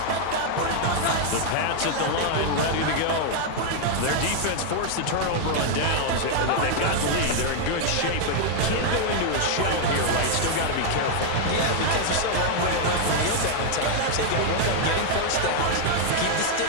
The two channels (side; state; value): both; different; correlation 0.00